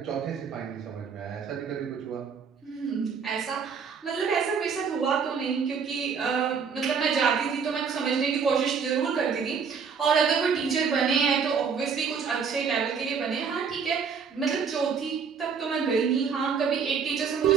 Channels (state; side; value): quieter; left; 6.2 dB